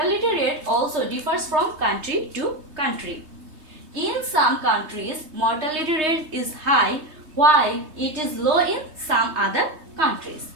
rate also differs from country to country. In some countries, mortality rate is high while it is low in some other countries.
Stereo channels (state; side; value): late; left; 3.2 ms